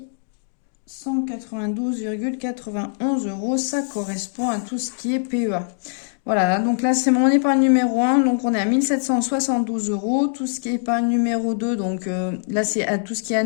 192,91 €. Ça correspond à tout ce qui est PEA. Voilà, donc là, c'est mon épargne numéro 1. Donc, on est à 1772 €. Tout ce qui est épargne numéro 2, donc là, c'est tout ce qui est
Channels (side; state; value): right; silent; digital silence